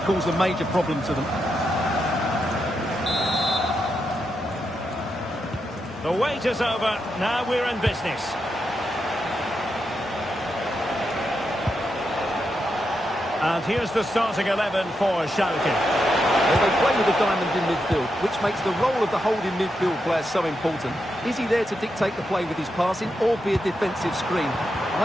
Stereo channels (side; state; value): both; normal; correlation 0.85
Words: a major problem to them. The wait is over, now we're in business. And here's the starting 11 for Schalke. Well, they play with a diamond in midfield, which makes the role of the holding midfield player so important. Is he there to dictate the play with his passing or be a defensive screen?